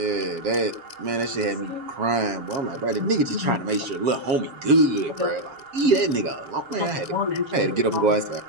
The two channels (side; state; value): left; late; 7.4 ms